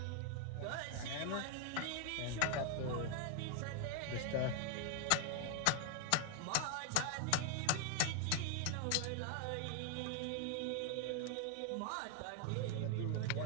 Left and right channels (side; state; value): both; different; correlation 0.00